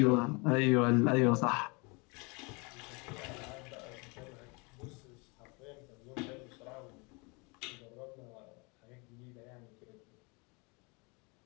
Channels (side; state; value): right; quieter; 29.6 dB